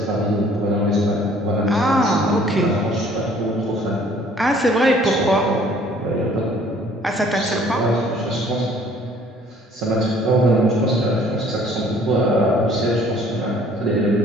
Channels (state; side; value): normal; both; correlation 0.57